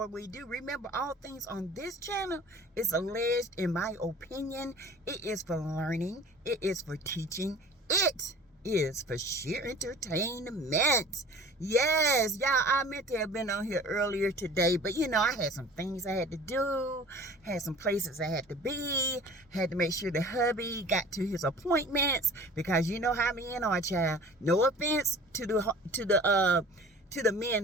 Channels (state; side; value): normal; both; correlation 0.44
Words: we do, remember all things on this channel is alleged, in my opinion. It is for learning. It is for teaching. It is for sheer entertainment. Yes, y'all, I meant to have been on here earlier today, but you know, I had some things I had to do, had some places I had to be, had to make sure the hubby got to his appointments, because you know how me and our child. No offense to the